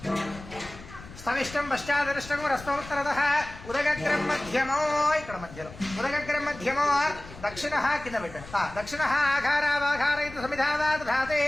స్థవిష్టం పశ్చాదరిష్టం రస్తోత్తరతః ఉదగగ్రం మధ్యమో ఇక్కడ మధ్యలో ఉదగగ్రం మధ్యమో దక్షిణః కింద పెట్టండి। దక్షిణః ఆఘారావాఘారయతి సమిధావా దధాతి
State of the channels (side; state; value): left; noise; rumble, 16 dB below the sound